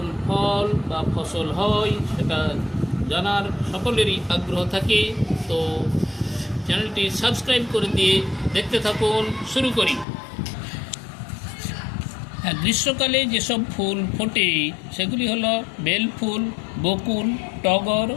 ফল বা ফসল হয় সেটা জানার সকলেরই আগ্রহ থাকে। তো চ্যানেলটি সাবস্ক্রাইব করে দিয়ে দেখতে থাকুন। শুরু করি। হ্যাঁ, গ্রীষ্মকালে যেসব ফুল ফোটে সেগুলি হলো বেল ফুল, বকুল, টগর,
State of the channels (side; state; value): right; drops out; at 10.1 s